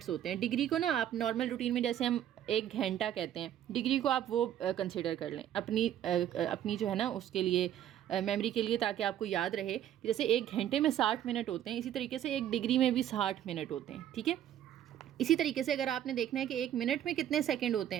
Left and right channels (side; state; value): left; quieter; 11.0 dB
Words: होते हैं। डिग्री को ना आप नॉर्मल रूटीन में जैसे हम 1 घंटा कहते हैं, डिग्री को आप वो कंसिडर कर लें अपनी जो है ना उसके लिए मेमोरी के लिए, ताकि आपको याद रहे कि जैसे 1 घंटे में 60 मिनट होते हैं, इसी तरीके से 1 डिग्री में भी 60 मिनट होते हैं, ठीक है। इसी तरीके से अगर आपने देखना है कि 1 मिनट में कितने सेकंड होते